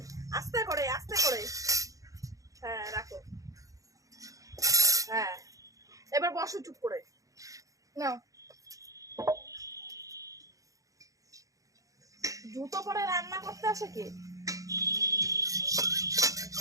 আস্তে করে আস্তে করে। হ্যাঁ রাখো। হ্যাঁ এবার বসো চুপ করে। নাও, জুতো পরে রান্না করতে আসে কি?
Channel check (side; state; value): left; late; 0.16 ms